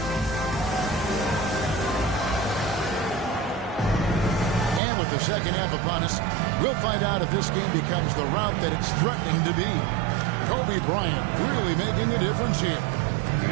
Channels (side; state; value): left; drops out; at 4.8 s